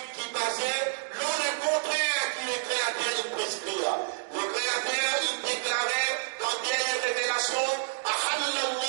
qui est basé le contraire qui le créateur il prescrit. Le créateur il déclarait dans dernière révélation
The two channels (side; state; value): left; silent; digital silence